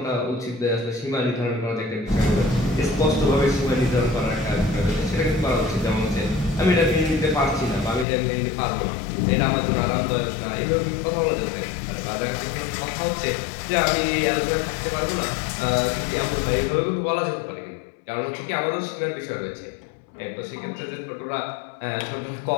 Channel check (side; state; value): right; drops out; at 8.1 s